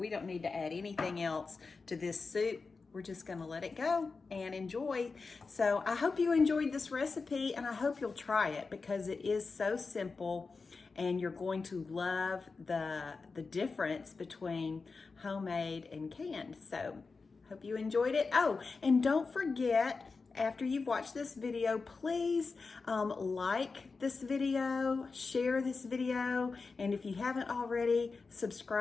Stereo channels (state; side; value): quieter; right; 4.4 dB